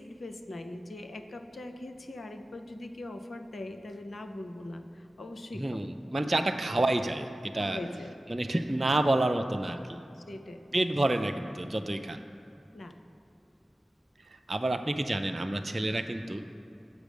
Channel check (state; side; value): normal; both; correlation 0.95